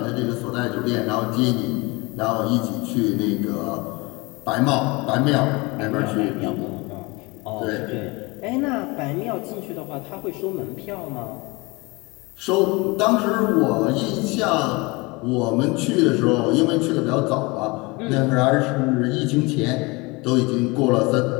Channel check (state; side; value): quieter; right; 25.4 dB